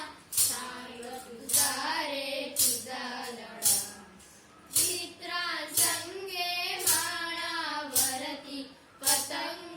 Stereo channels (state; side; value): identical; both; correlation 1.00